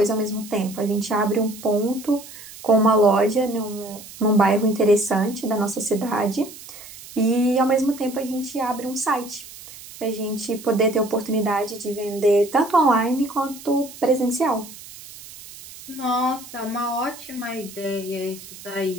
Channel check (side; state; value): right; noise; hiss, 16 dB below the sound